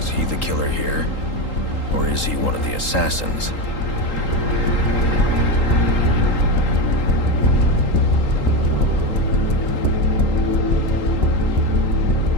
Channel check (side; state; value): right; late; 3.8 ms